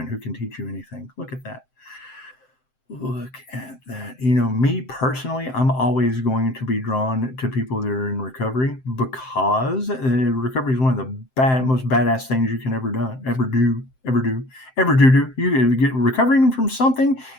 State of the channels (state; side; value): late; right; 7.7 ms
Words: who can teach you anything. Look at that. Look at that. You know, me personally, I'm always going to be drawn to people that are in recovery because recovery is one of the most badass things you can ever do. You get recovering from something,